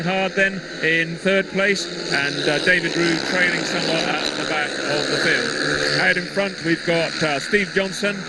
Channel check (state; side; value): identical; both; correlation 1.00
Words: then in third place, and David Ruud trailing somewhat at the back of the field. crowd in front. We've got Steve Johnson.